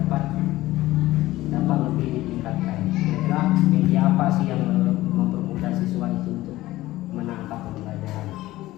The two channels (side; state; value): right; quieter; 16.9 dB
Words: lebih ditingkatkan? Kira-kira media apa sih yang mempermudah siswa itu untuk menangkap pembelajaran?